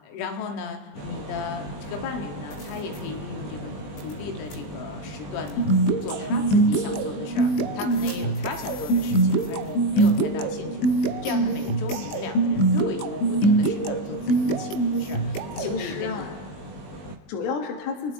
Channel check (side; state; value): right; late; 20 ms